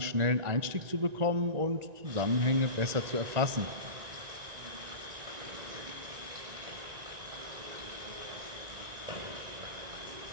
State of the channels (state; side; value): late; left; 1.9 ms